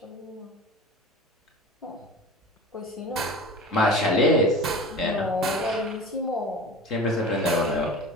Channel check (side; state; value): both; normal; correlation 0.36